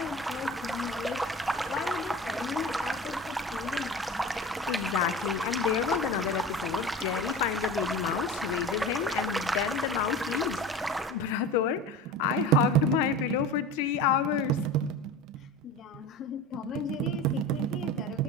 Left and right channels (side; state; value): both; normal; correlation 0.34